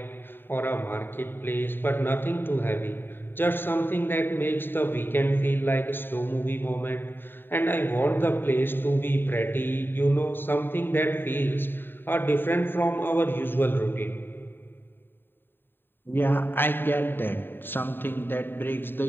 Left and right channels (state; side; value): late; right; 0.097 ms